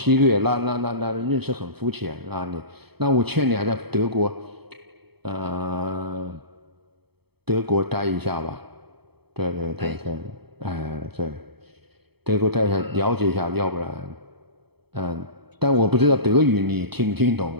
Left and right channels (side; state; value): left; late; 0.97 ms